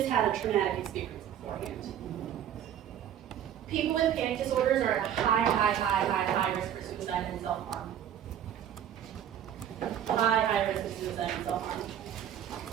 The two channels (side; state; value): left; quieter; 10.1 dB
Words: had a traumatic experience beforehand. People with panic disorders are at a high risk for suicide and self-harm. High risk of suicide and self-harm.